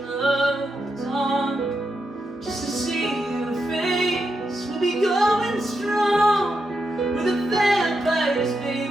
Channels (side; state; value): both; normal; correlation 0.85